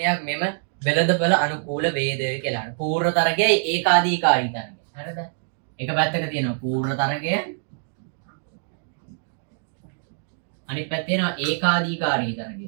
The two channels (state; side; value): silent; left; digital silence